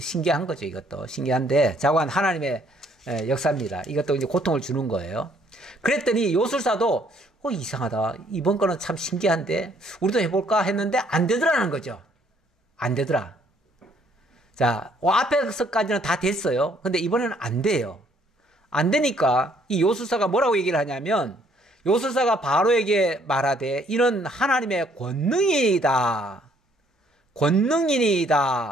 거죠. 이것도 신기한데 자관 하나님의 역사입니다. 이것도 이제 고통을 주는 거예요. 그랬더니 요술사도 이상하다. 이번 거는 참 신기한데 우리도 해볼까 했는데 안 되더라는 거죠. 안 되더라. 자, 앞에서까지는 다 됐어요. 근데 이번에는 안 돼요. 안 되니까 이 요술사가 뭐라고 얘기를 하냐면 요술사가 바로에게 말하되 이는 하나님의 권능이다.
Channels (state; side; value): normal; both; correlation 0.65